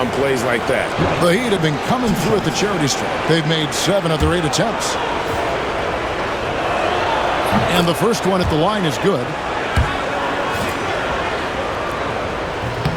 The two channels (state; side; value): identical; both; correlation 1.00